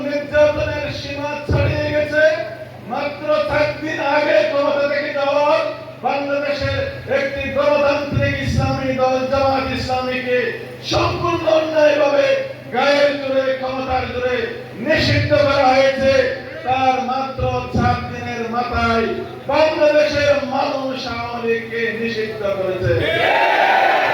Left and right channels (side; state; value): both; identical; correlation 1.00